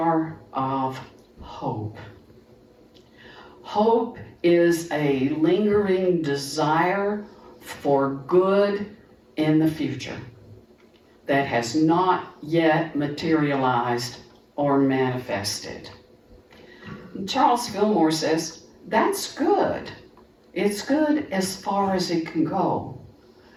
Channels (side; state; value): both; identical; correlation 1.00